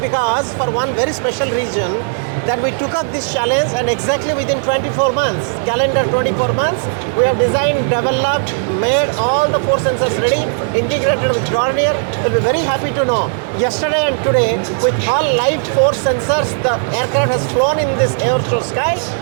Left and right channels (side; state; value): left; silent; digital silence